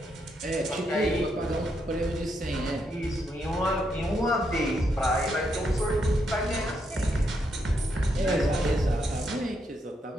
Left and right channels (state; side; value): normal; both; correlation 0.79